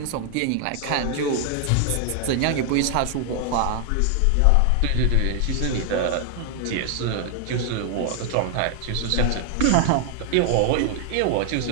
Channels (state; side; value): different; both; correlation 0.00